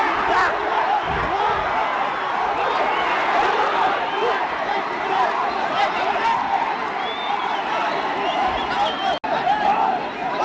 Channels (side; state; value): both; identical; correlation 1.00